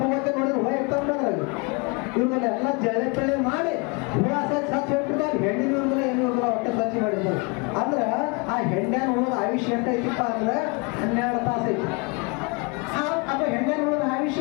ಹೋಗಕ್ಕೆ ನೋಡಿದ್ರೆ ಹುಳ ಇರ್ತಾವ. ಇವ್ರನ್ನ ಎಲ್ಲ ಜಳೆ ಪಳೆ ಮಾಡಿ ಹುಳ ಸಚ್ಚ ಹೋಗ್ಬಿಡ್ತಾರೆ. ಹೆಂಡಿ ಇವ್ರಲ್ಲ ಏನು ಇವ್ರಲ್ಲ ಹೊಟ್ಟೆ ಸ್ವಚ್ಛ ಮಾಡಿರ್ತಾರೆ. ಅಂದ್ರೆ ಆ ಹೆಂಡ್ಯಾನ ಹುಳದ ಆಯುಷ್ಯ ಎಂಟ ಐತಿಪ್ಪ ಅಂದ್ರೆ 12 ತಾಸು ಐತಿ. ಅದು ಹೆಂಡ್ಯಾನ ಹುಳದ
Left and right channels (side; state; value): right; quieter; 31.1 dB